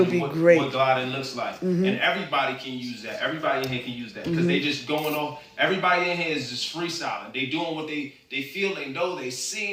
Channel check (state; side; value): identical; both; correlation 1.00